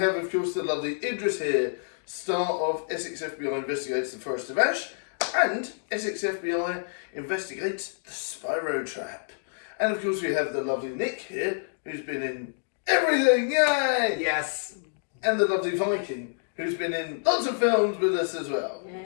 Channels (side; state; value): right; silent; digital silence